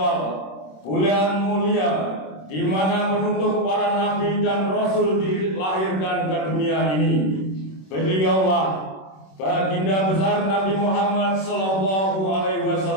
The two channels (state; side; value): late; right; 26 ms